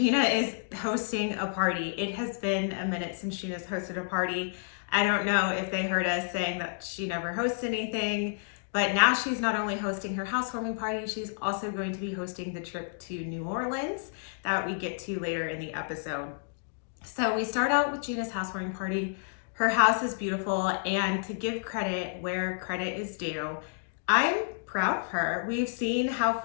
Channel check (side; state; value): right; silent; digital silence